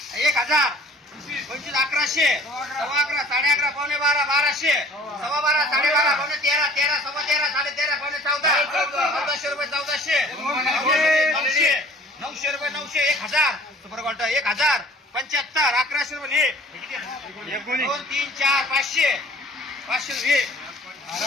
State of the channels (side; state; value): both; normal; correlation 0.50